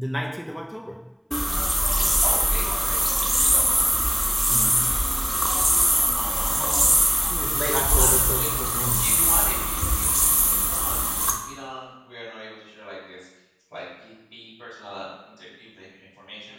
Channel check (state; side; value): identical; both; correlation 1.00